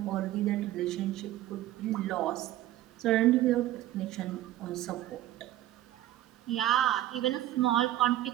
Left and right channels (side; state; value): left; quieter; 14.1 dB